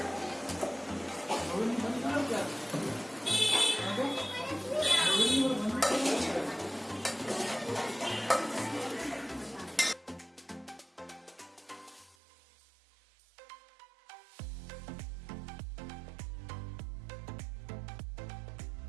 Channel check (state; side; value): drops out; left; at 12.2 s